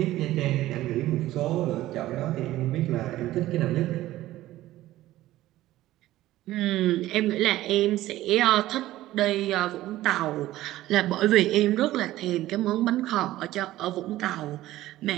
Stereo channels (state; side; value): quieter; left; 15.4 dB